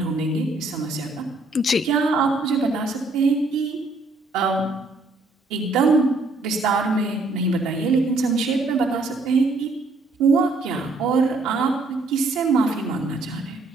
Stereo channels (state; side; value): quieter; left; 3.2 dB